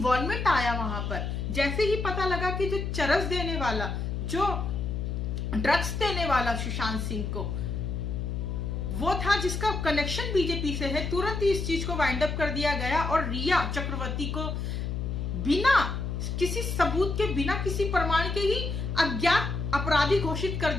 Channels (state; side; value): noise; left; hum, 3 dB below the sound